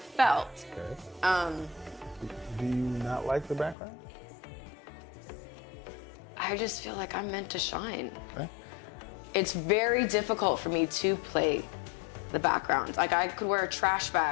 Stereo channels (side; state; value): right; drops out; at 3.8 s